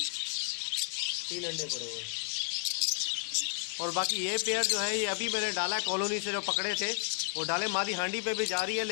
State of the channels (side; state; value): right; silent; 56 dB below the other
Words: 3 अंडे पड़े हुए। और बाकी ये पेयर जो है ये अभी मैंने डाला है कॉलोनी से, जो पकड़े थे वो डाले। मादी हांडी पे भी जा रही है,